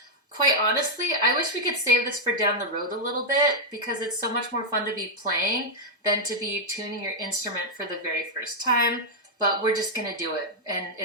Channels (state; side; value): normal; both; correlation -0.02